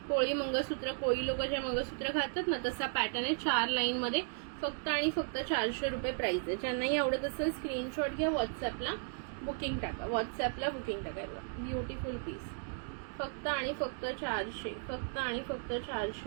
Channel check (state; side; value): silent; left; 54 dB below the other